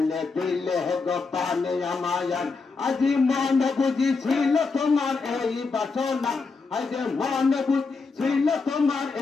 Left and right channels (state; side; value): quieter; right; 4.4 dB